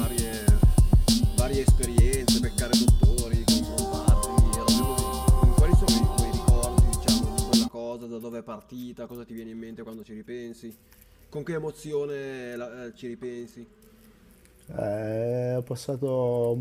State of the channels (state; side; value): identical; both; correlation 1.00